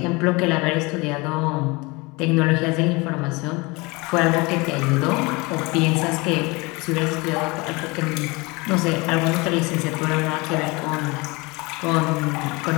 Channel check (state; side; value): quieter; right; 25.4 dB